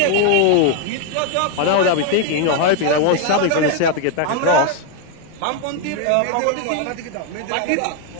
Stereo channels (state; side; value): different; both; correlation 0.01